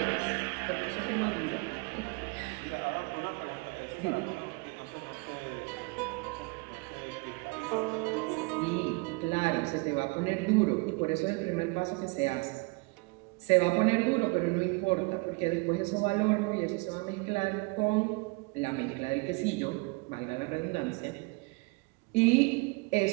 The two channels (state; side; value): quieter; left; 28.2 dB